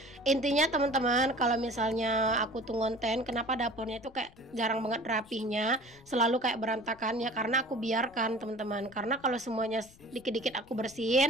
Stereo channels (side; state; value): left; noise; rumble, 25 dB below the sound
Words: Intinya teman-teman, kalau misalnya aku tuh ngonten kenapa dapurnya itu kayak jarang banget rapihnya, selalu kayak berantakan ya, karena aku biarkan teman-teman. Karena kalau semuanya dikit-dikit aku